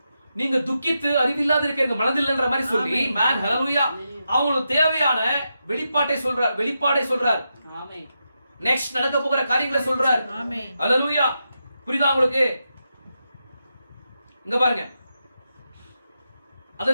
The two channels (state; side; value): inverted; both; correlation -0.86